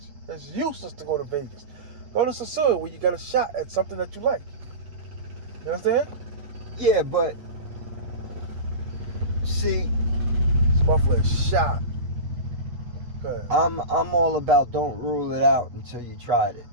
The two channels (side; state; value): left; late; 8.4 ms